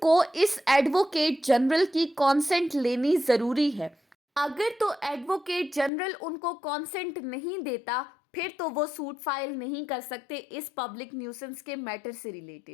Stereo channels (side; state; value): right; drops out; at 5.9 s